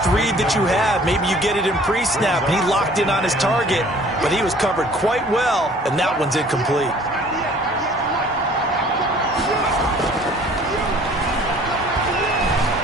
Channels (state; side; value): normal; both; correlation 0.53